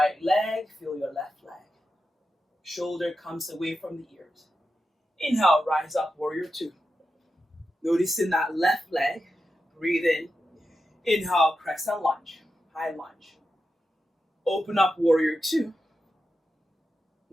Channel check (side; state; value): both; normal; correlation 0.89